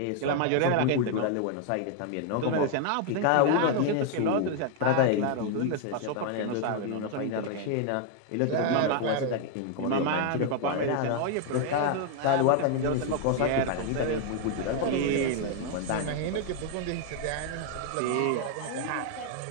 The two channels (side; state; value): both; different; correlation 0.00